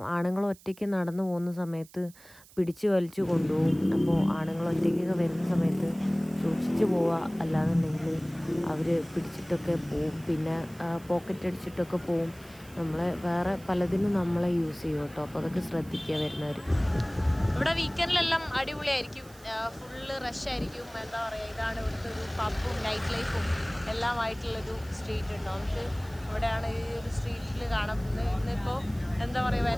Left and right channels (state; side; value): noise; right; hiss, 23 dB below the sound